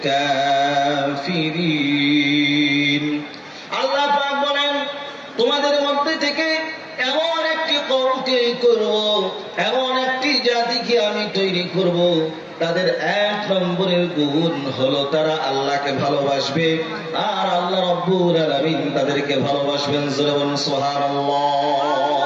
আল্লাহ পাক বলেন, তোমাদের মধ্যে থেকে এমন একটি কওমকে করব, এমন একটি জাতিকে আমি তৈরি করব, তাদের এক নম্বরের গুণ হলো তারা আল্লাহকে ভালোবাসবে, আর আল্লাহ রাব্বুল আলামিন তাদেরকে ভালোবাসবেন। জোরে বলুন সুবহানাল্লাহ।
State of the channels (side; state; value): both; identical; correlation 1.00